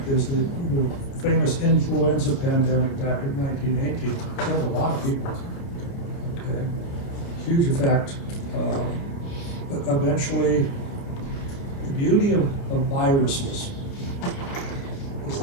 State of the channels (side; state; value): right; late; 29 ms